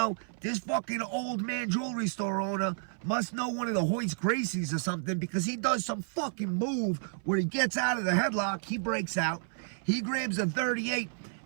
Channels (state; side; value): silent; left; 57 dB below the other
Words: this fucking old man jewelry store owner must know one of the Hoist Gracies or something, because he does some fucking move where he gets out of the headlock, he breaks out, he grabs a 38,